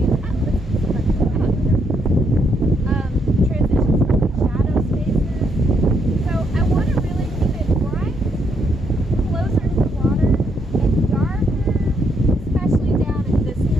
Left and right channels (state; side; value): normal; both; correlation 0.75